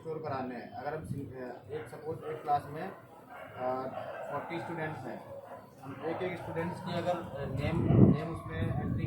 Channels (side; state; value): both; identical; correlation 1.00